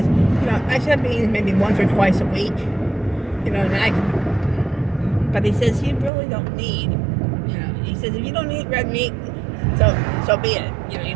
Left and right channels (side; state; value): left; drops out; at 6.1 s